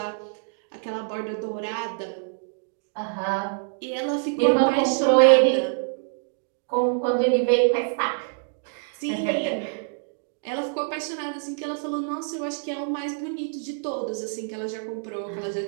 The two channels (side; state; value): left; silent; digital silence